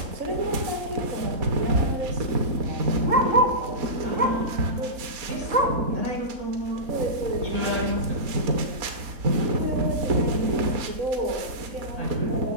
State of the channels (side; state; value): left; late; 4.1 ms